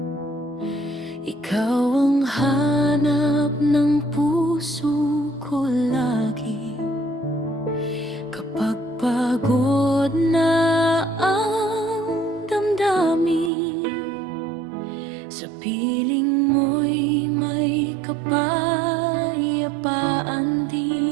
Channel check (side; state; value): left; drops out; at 13.5 s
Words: Ikaw ang hanap ng puso ko lagi. Kapag pagod na ang damdamin, sa piling mo'y may kapayapaan